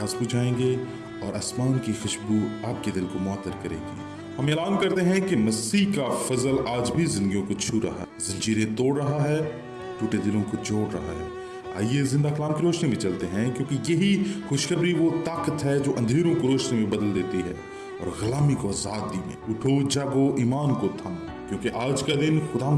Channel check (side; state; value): both; identical; correlation 1.00